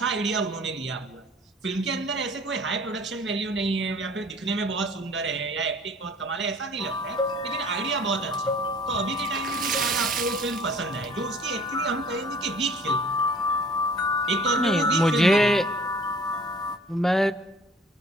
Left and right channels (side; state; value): both; normal; correlation 0.50